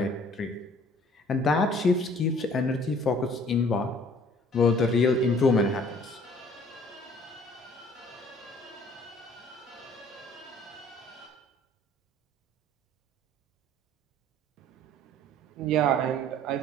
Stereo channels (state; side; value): normal; both; correlation 0.54